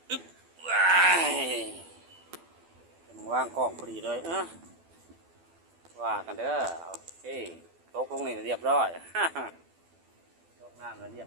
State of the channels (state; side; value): late; left; 12 ms